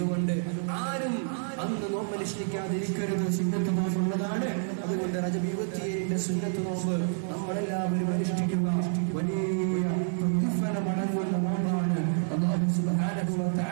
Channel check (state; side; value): silent; left; 59 dB below the other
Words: ആരും അന്ന് നോമ്പനുഷ്ഠിക്കാതിരിക്കരുത്. സുന്നത്ത് നോമ്പുള്ളതാണ്. അതുകൊണ്ട് റജബ് 27 സുന്നത്ത് നോമ്പ് നമ്മളെല്ലാവരും അനുഷ്ഠിക്കുക. വലിയ പ്രതിഫലമടങ്ങുന്ന നോമ്പാണ്. അല്ലാഹു സുബ്ഹാനഹു വ